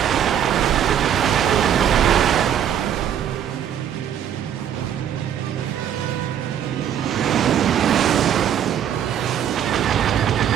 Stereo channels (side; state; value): left; quieter; 9.5 dB